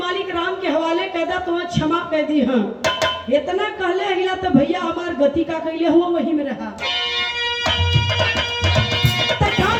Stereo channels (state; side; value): identical; both; correlation 1.00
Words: राम के हवाले कर दा तुम्हें क्षमा कर दी। हाँ इतना कहले हिला तो भैया हमार गति का कहले हुआ वही में रहा।